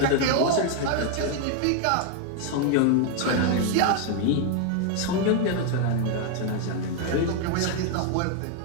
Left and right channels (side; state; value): both; different; correlation 0.00